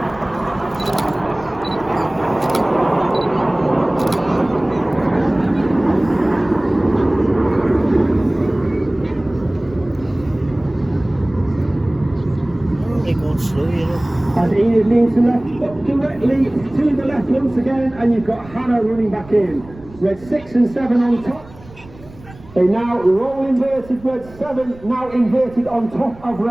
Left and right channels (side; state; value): right; noise; rumble, 21 dB below the sound